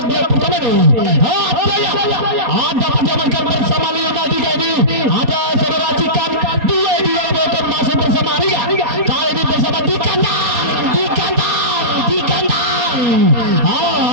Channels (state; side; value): late; left; 4.2 ms